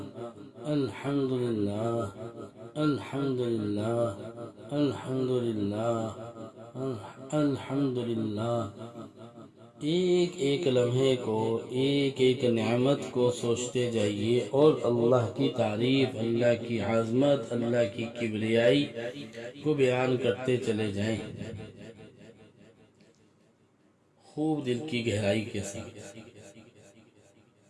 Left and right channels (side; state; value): both; identical; correlation 1.00